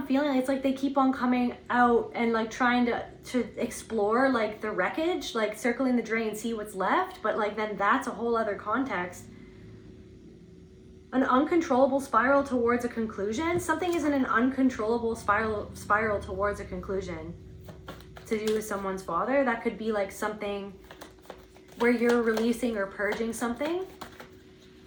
feeling it's like they keep on coming out and like trying to explore like the wreckage, like circling the drain, see what's left, but like then that's a whole other context. An uncontrollable spiral towards a conclusion. Something is in an uncontrollable spiral towards a conclusion. To do with someone's father. That could be like something where you're releasing or purging something.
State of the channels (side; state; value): both; identical; correlation 1.00